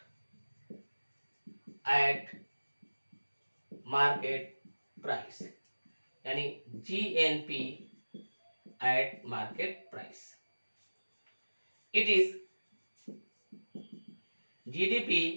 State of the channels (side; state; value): both; inverted; correlation -1.00